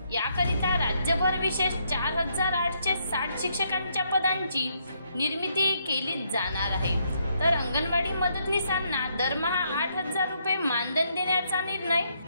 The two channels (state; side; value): inverted; both; correlation -0.74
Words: याकरिता राज्यभर विशेष 4,860 शिक्षकांच्या पदांची निर्मिती केली जाणार आहे। तर अंगणवाडी मदतनीसांना दरमहा 8,000 रुपये मानधन देण्याचा निर्णय